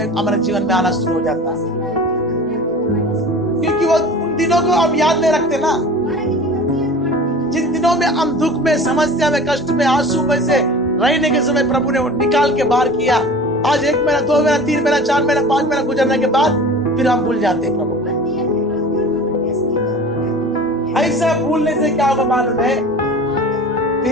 हमारे जीवन में आना शुरू हो जाता है, क्योंकि वो उन दिनों को अब याद नहीं रखते ना, जिन दिनों में हम दुख में, समस्या में, कष्ट में, आंसू में से रहने के समय प्रभु ने निकाल के बाहर किया। आज 1 महीना, 2 महीना, 3 महीना, 4 महीना, 5 महीना गुजरने के बाद फिर हम भूल जाते हैं प्रभु। ऐसा भूलने से क्या होगा मालूम है?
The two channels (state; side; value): normal; both; correlation 0.39